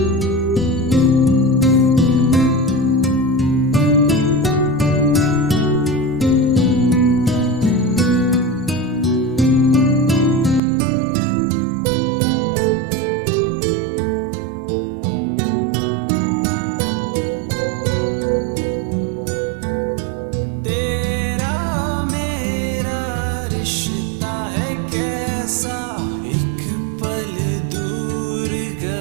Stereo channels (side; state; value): left; drops out; at 10.6 s